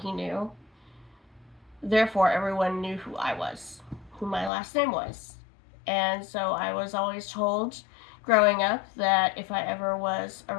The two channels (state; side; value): drops out; right; at 4.5 s